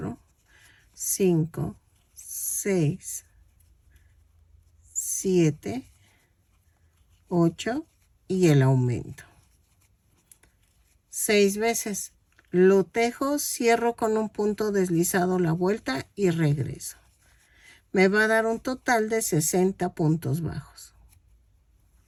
5, 6, 7, 8 y el aumento. 6 veces. Lo tejo, cierro con un punto deslizado la vuelta y regreso. Me va a dar un total de 60 puntos bajos.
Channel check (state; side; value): identical; both; correlation 1.00